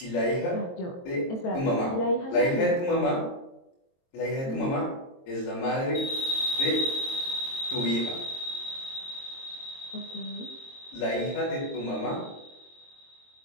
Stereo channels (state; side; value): late; right; 22 ms